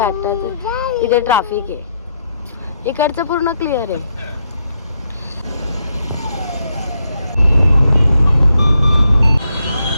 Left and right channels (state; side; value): inverted; both; correlation -0.78